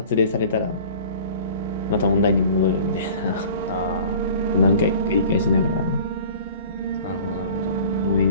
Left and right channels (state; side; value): inverted; both; correlation -0.45